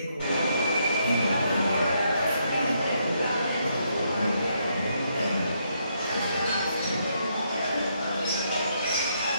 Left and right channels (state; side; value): inverted; both; correlation -0.76